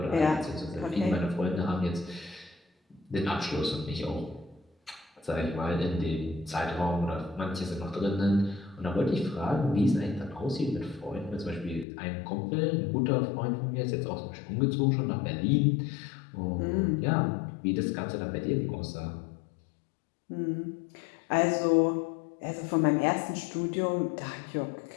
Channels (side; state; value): right; drops out; at 11.9 s